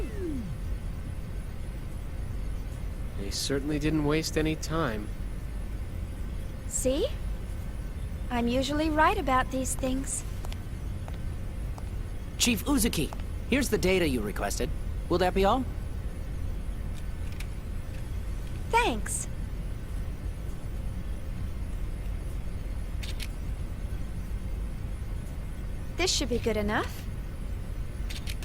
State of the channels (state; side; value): identical; both; correlation 1.00